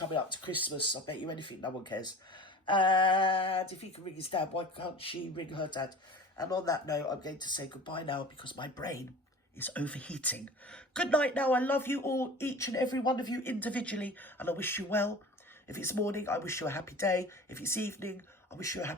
up to Christmas, I bet you anything, no one cares. And if he can ring his dad, why can't she ring her dad? And on that note, I'm going to say goodbye now because my brain is overheating. Good night now. I love you all, each and every one of you individually, and I wish you well. If it's morning, I wish you a happy day. If it's evening, I wish you a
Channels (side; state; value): both; normal; correlation 0.40